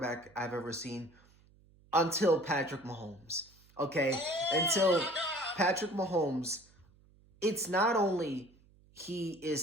I've ever seen until Patrick Mahomes. Okay? Until Patrick Mahomes, it's not only he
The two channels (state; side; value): noise; right; hum, 29 dB below the sound